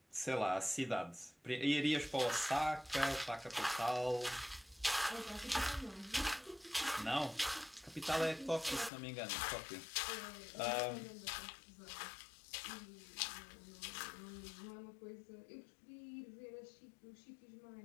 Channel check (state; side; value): drops out; right; at 8.9 s